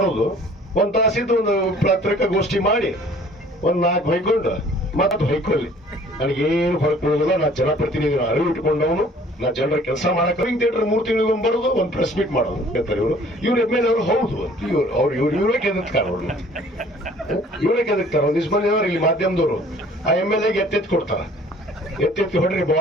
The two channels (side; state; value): both; normal; correlation 0.53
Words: ಬರೋದು, ಒಂದ್ ತಾಸಿದ್ದು ಒಂದು ಪತ್ರಿಕಾಗೋಷ್ಠಿ ಮಾಡಿ ಒಂದ್ 4 ಹೊಯ್ಕೊಂಡು ಮತ್ತೆ ಹೊಯ್ಕೊಳ್ಳಿ. ನನಗೇನು ಹೊರಗೆ ಕೊಡೋದಿಲ್ಲ. ನಾ ಜನಪ್ರತಿನಿಧಿ ಅರಿವು ಇಟ್ಕೊಂಡವನು. ನಾ ಜನರ ಕೆಲಸ ಮಾಡಕ್ ಥಿಯೇಟರ್ 3 ತಿಂಗಳಿಗೊಮ್ಮೆ ಬರೋದು, ಒಂದು ಪ್ರೆಸ್ ಮೀಟ್ ಮಾಡೋದು ಹೇಳ್ತಾರೆ ಇವರು. ಎಮ್.ಎಲ್.ಎ ಅವರು ಹೌದು ಇವರೇ ಕೆದಕ್ತಾರ. ಇವರೇ ಕೆದಕ್ತಾರ. ಒಂದಿಷ್ಟು ಮಂದಿ ಅವರು ಇಲ್ಲಿ ಮಾಧ್ಯಮದವರು ಆ ಎಮ್.ಎಲ್.ಎಗೆ ಎತ್ತೆತ್ತಿ ಕೊಡ್ತಾರ. ಎತ್ತೆತ್ತಿ ಹೊಡ್ರಿ